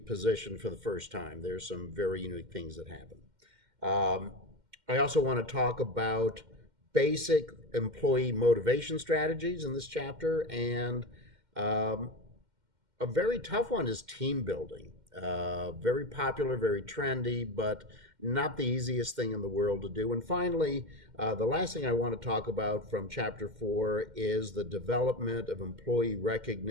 for the first time. There's some very unique things that happen. I also want to talk about basic employee motivation strategies in this chapter, and a very tough one is team building. Very popular, very trendy, but not the easiest thing in the world to do. And finally, the last thing I want to talk about from Chapter 4 is the development of employee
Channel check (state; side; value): late; left; 2.1 ms